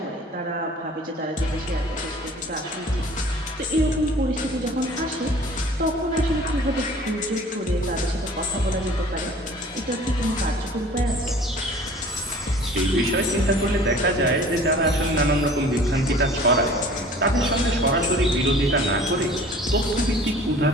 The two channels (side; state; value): both; normal; correlation 0.48